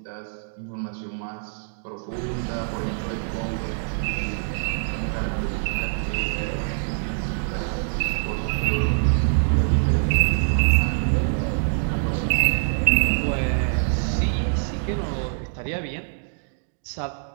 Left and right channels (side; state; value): left; silent; digital silence